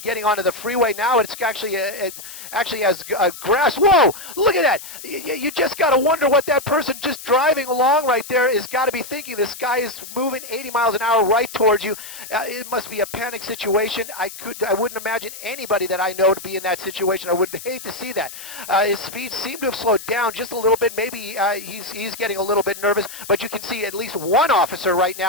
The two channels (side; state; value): left; noise; hiss, 13 dB below the sound